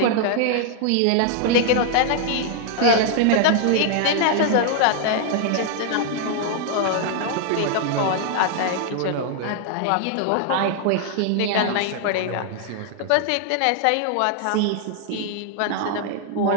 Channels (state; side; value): different; both; correlation 0.00